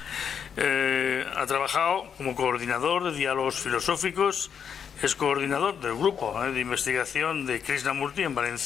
Ha trabajado como coordinador de diálogos filosóficos, es coordinador del grupo de investigación de Krishnamurti en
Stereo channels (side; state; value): right; quieter; 7.5 dB